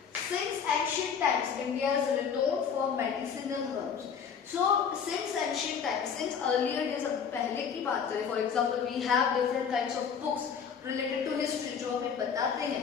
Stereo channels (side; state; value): right; quieter; 6.9 dB